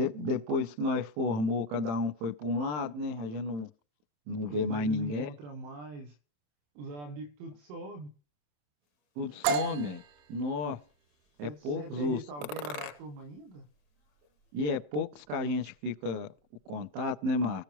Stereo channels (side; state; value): left; late; 27 ms